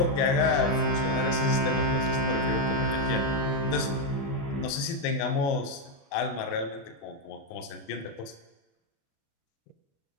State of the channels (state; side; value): late; right; 36 ms